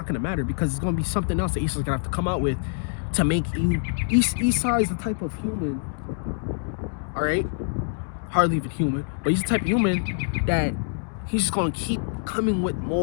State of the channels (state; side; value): silent; right; digital silence